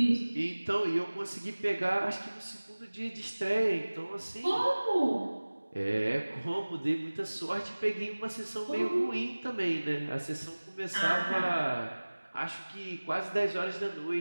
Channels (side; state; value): both; inverted; correlation -1.00